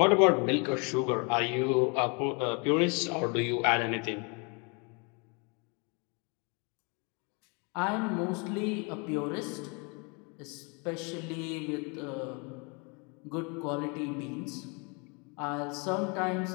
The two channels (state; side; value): quieter; right; 33.5 dB